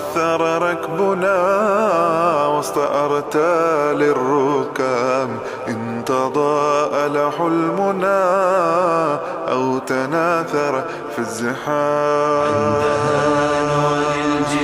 ركبنا وسط أرتال الركام، إن تضاءل حلمنا أو تناثر في الزحام. عندها نعلي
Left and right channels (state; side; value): identical; both; correlation 1.00